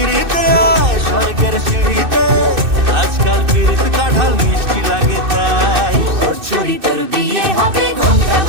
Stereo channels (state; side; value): late; left; 2.6 ms